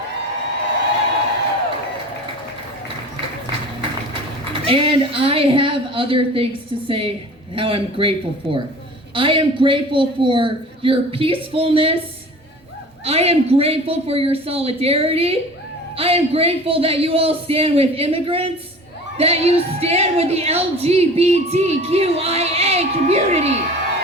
And I have other things to say how I'm grateful for. I am grateful for your peacefulness. I am grateful for your solidarity. I am grateful that you all stand with immigrants, that you stand with the LGBTQIA community,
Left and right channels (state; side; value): normal; both; correlation 0.41